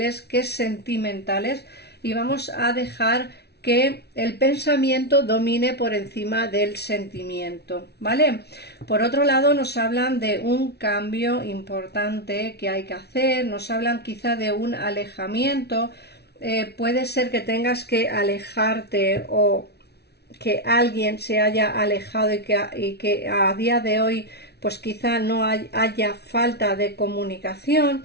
que sentimentales, y vamos a dejar que el pensamiento domine por encima del sentimiento, ¿vale? Por otro lado, nos hablan de un cambio importante que hay que hacer, nos hablan quizá de un alejamiento. Puede ser que tengas que alejarte, o que alguien se haya alejado, y que a día de hoy pues quizá no haya falta de comunicación.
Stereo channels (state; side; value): late; right; 0.48 ms